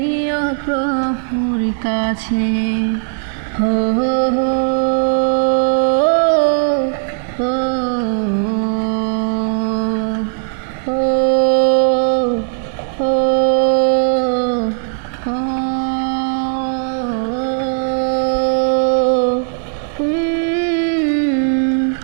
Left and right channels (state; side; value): silent; left; digital silence